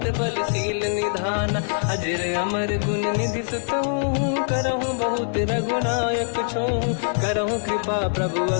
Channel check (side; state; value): right; silent; digital silence